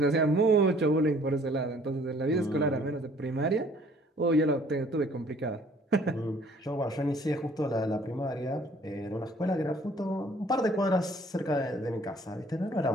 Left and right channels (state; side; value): normal; both; correlation 0.57